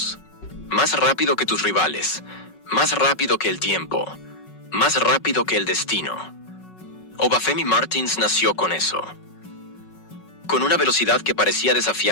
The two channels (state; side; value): late; right; 5.4 ms